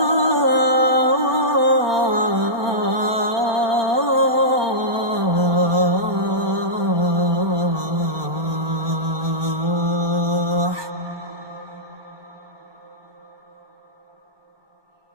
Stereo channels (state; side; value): late; left; 1.2 ms